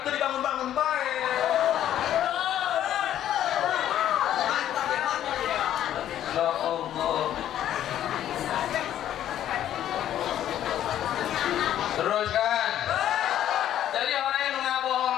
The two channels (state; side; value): quieter; right; 11.5 dB